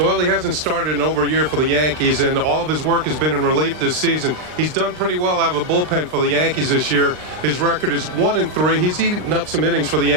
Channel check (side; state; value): left; late; 39 ms